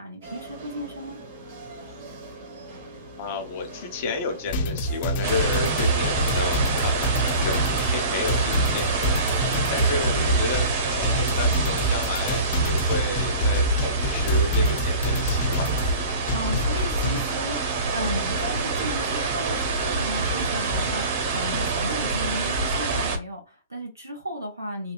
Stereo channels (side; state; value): both; inverted; correlation -0.39